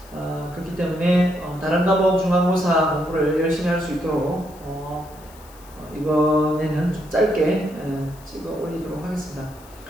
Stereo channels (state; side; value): noise; left; hiss, 24 dB below the sound